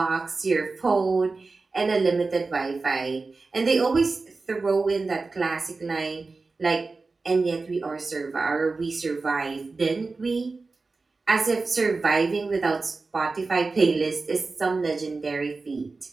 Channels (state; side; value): quieter; left; 3.9 dB